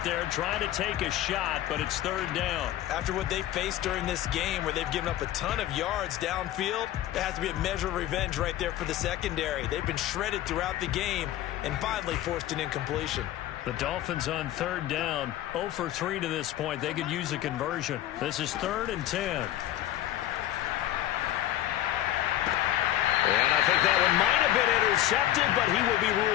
there, trying to take a shot, but it's third down. After what they faced during this game, where they've given up a ton of yards downfield, there has to be a measure of revenge right there for the secondary. They've been shredded throughout the game and finally forced an incompletion. The Dolphins on third down, 0 for 3 to this point. They could use a conversion. This is 3rd and 10. And I think that one might have been intercepted, but he will be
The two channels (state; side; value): quieter; right; 13.3 dB